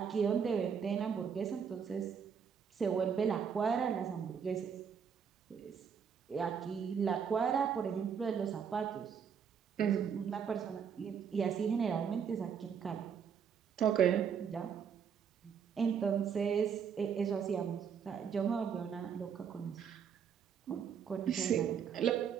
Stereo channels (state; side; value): quieter; left; 7.2 dB